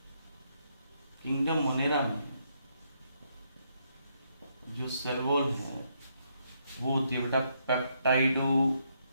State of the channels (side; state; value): both; inverted; correlation -0.75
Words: किंगडम मोनेरा में जो सेल वॉल है वो होती है बेटा